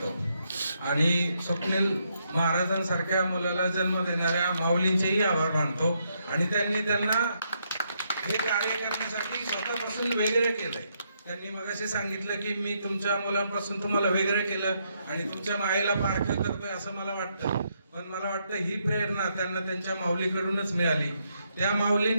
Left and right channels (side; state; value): both; inverted; correlation -0.77